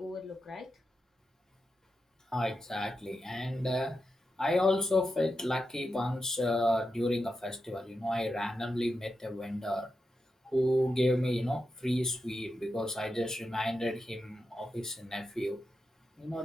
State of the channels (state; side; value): normal; both; correlation 0.88